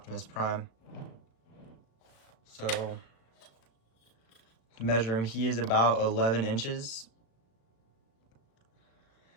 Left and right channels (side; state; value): right; late; 35 ms